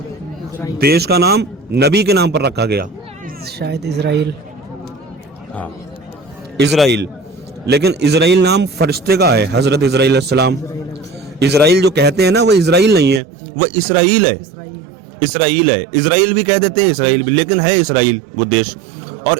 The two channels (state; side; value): drops out; left; at 13.2 s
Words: देश का नाम नबी के नाम पर रखा गया। शायद इजराइल। हाँ, इजराइल। लेकिन इजराइल नाम फरिश्ते का है, हजरत इजराइल अलैहिस्सलाम। इजराइल जो कहते हैं ना, वो इजराइल नहीं है, वो इसराइल है। इसराइल है, इजराइल भी कह देते हैं, इसराइल भी, लेकिन है इसराइल वो देश। और